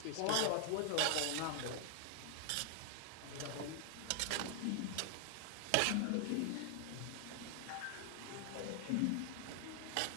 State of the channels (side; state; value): both; different; correlation 0.00